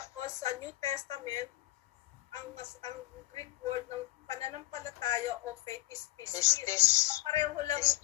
sa New Testament, ang Greek word ng pananampalataya o faith is pistis. Pareho lang ang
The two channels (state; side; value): quieter; right; 18.7 dB